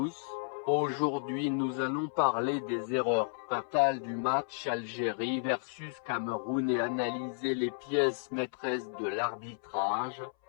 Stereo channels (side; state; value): right; silent; 56 dB below the other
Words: aujourd'hui nous allons parler des erreurs fatales du match Algérie versus Cameroun et analyser les pièces maîtresses de l'arbitrage.